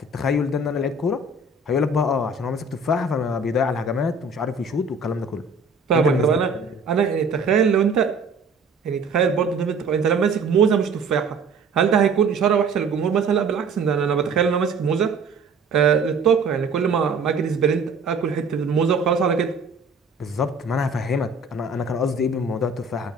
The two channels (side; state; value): left; quieter; 3.7 dB